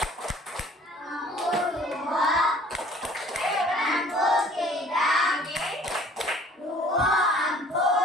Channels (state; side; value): normal; both; correlation 0.53